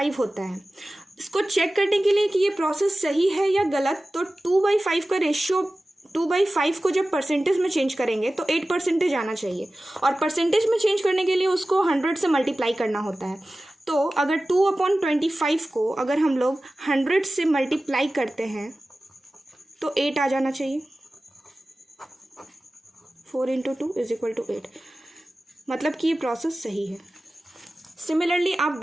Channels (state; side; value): normal; both; correlation 0.96